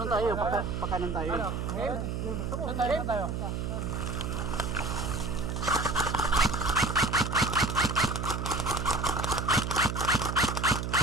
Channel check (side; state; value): right; noise; hum, 3 dB below the sound